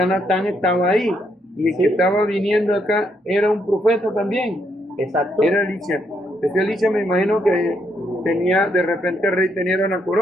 Natán estaba ahí. Y el que estaba viniendo acá era un profeta también. Exacto. Era Elisha. Ese Elisha me imagino que tenía, de repente el rey tenía una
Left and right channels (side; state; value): both; normal; correlation 0.76